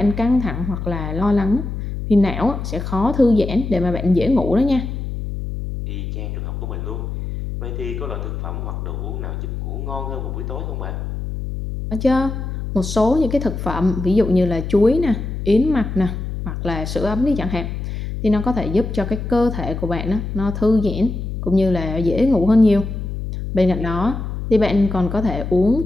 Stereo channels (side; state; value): left; noise; hum, 5 dB below the sound